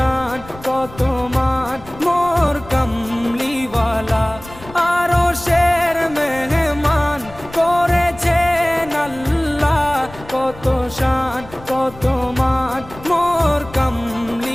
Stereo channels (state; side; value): noise; left; rumble, 18 dB below the sound